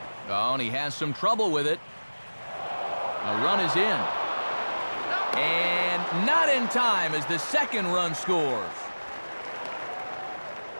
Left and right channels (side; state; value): both; inverted; correlation -1.00